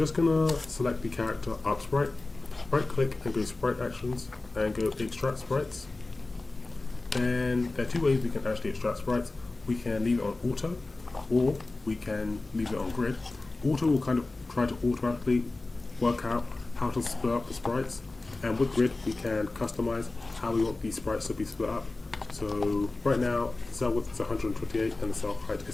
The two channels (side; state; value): right; quieter; 3.2 dB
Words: going to select the character up sprite, right click and go Sprite Actions and go Extract Sprites. And there are two ways we can actually extract sprites. We can leave it on auto, or we can leave it on grid. Auto will kind of try to automatically work out how to split up the sprites, and with grid we can customize how we want these sprites to be split up. So right now the cell width is 128 and the cell height